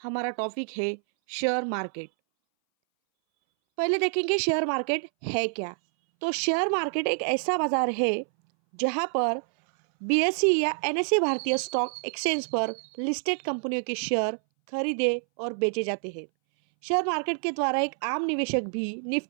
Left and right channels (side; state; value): left; silent; 60 dB below the other